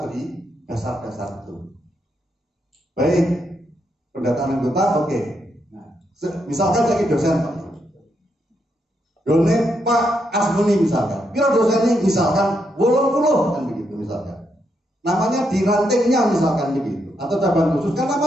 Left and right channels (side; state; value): both; normal; correlation 0.79